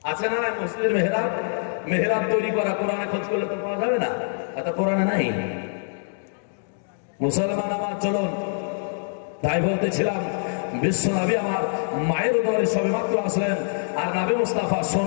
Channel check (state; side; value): silent; right; digital silence